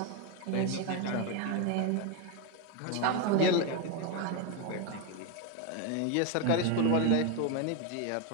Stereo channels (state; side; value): different; both; correlation 0.02